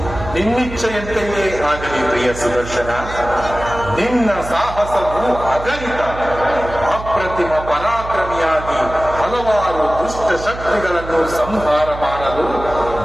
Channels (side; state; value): right; noise; hum, 11 dB below the sound